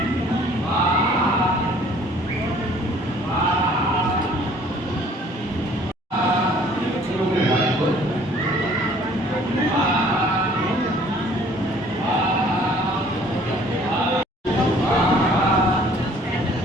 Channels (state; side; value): normal; both; correlation 0.55